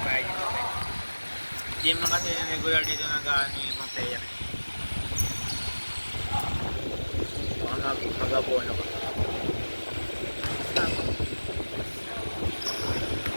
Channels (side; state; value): both; inverted; correlation -1.00